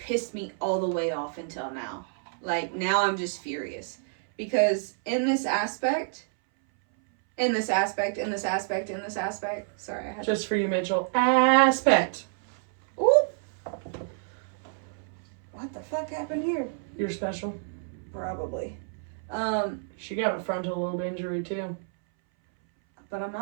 me all the way off until now. Like, now I'm just furious. Because in this aspect, sorry, I had just for you, Mitchell. Aspect. Ooh. What the fuck happened here? You're special. Probably. She got a frontal lobe injury, too. But I'm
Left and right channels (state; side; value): silent; left; 59 dB below the other